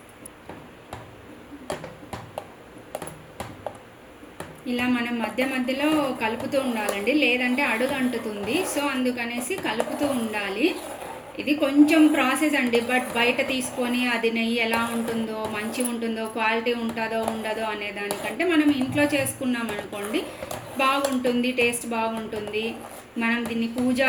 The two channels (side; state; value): both; identical; correlation 1.00